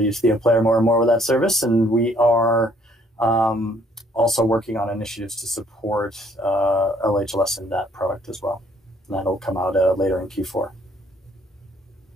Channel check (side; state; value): both; normal; correlation 0.64